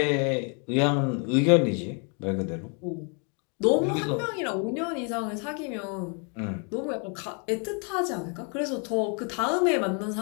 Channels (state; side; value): quieter; right; 37.6 dB